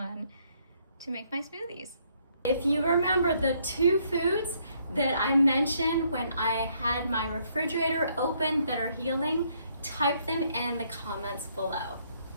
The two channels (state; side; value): inverted; both; correlation -0.70